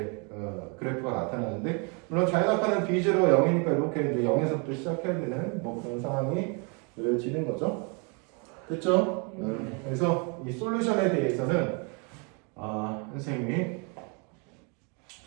그래프가 나타나는데 물론 자유낙하는 B0가 0이니까 이렇게 이제 0에서부터 시작해야 되는 뭐 그런 상황이 느려지는 거죠. 됐죠? 그래서 이 솔루션에 대해서는 선생님이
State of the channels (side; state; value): left; quieter; 34.2 dB